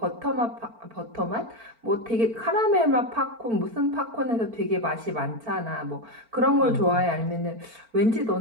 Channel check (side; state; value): left; late; 4.4 ms